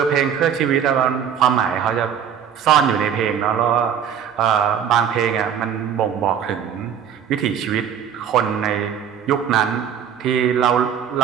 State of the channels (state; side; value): quieter; left; 8.4 dB